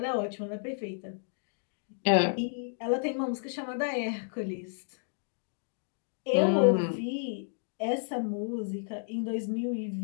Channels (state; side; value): silent; right; digital silence